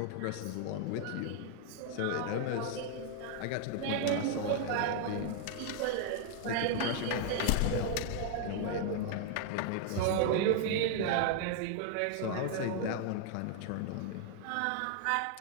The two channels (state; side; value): different; both; correlation 0.00